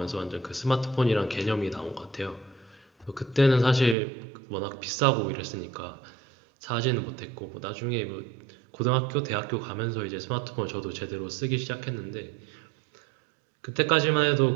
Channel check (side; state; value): left; drops out; at 4.0 s